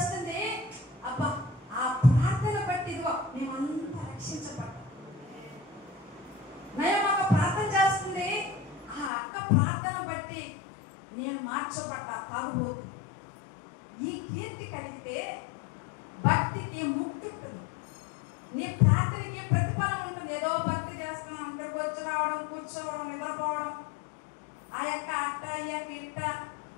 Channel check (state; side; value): drops out; right; at 9.1 s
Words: అబ్బా ఆ ప్రార్థన బట్టి ఇదిగో మేమంతా రక్షించబడ్డాం. నయమక్క ప్రార్థన చేస్తుంది. ఆ అక్క ప్రార్థన బట్టి నేను మార్చబడ్డా తాగుబోతు. ఈ కీర్తి కలిగితే భక్తికి ముక్తి ఉంటుంది. నీ ప్రార్థనకి ప్రతిఫలం ఉంటుంది. ఏదో భక్తి చేస్తున్నాం, ఇక్కడికి వచ్చి రావడం, కూర్చోవడం, నిద్రపోవడం, ఆ యొక్క అట్ట ఈ యొక్క ఇట్ట